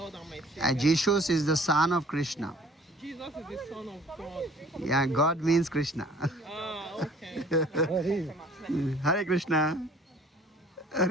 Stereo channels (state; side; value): normal; both; correlation 0.53